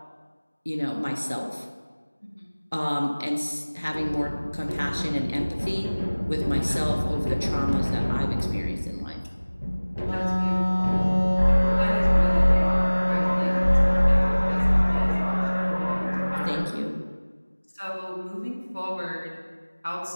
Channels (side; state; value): both; inverted; correlation -1.00